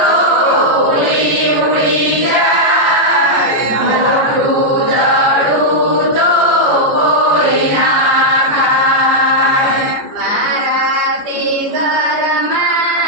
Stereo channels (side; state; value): left; late; 14 ms